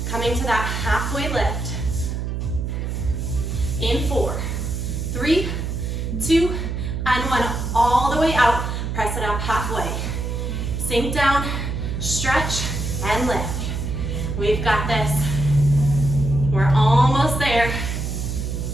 coming to that halfway lift. In 4, 3, 2, and 1. All the way out, press it up halfway. Sink down, stretch, and lift. We've got this. We're almost there.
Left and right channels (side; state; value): right; noise; hum, 3 dB below the sound